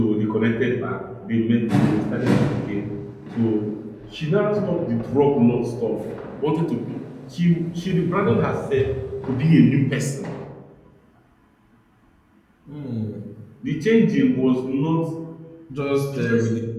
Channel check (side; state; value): both; identical; correlation 1.00